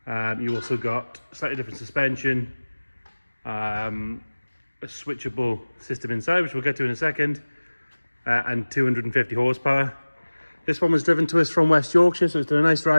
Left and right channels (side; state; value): both; inverted; correlation -1.00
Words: You also got slightly different suspension, a switchable system inside, which we'll get to in a second, and 250 horsepower. This one was driven to us from West Yorkshire, so it's done a nice